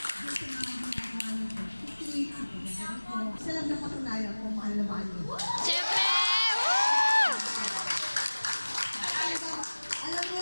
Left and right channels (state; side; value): inverted; both; correlation -1.00